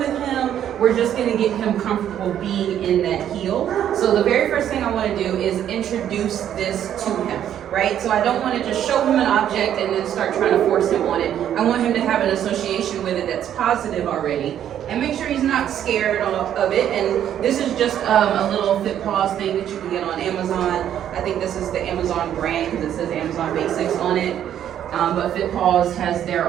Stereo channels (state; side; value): quieter; left; 10.3 dB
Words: him. We're just going to get him comfortable being in that heel. So the very first thing I want to do is introduce this to him, right? So I don't want to just show him an object and then start trying to force him on it. I want him to have an association with it that's positive already, and make sure he's not scared of it. And this is just a little Fit Paws thing that you can get on Amazon. I think this is the Amazon brand because it says Amazon Basics on it. But Fit Paws has